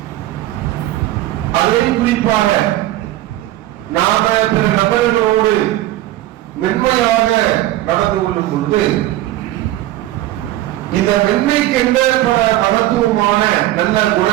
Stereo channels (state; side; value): quieter; left; 15.2 dB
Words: அதை குறிப்பாக நாம பிற நபர்களோடு மென்மையாக நடந்து கொள்ளும் பொழுது, இந்த மென்மைக்கு என்ன பல மகத்துவமான நல்ல